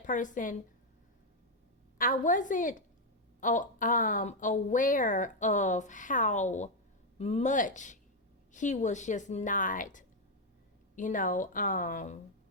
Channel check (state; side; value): normal; both; correlation 0.02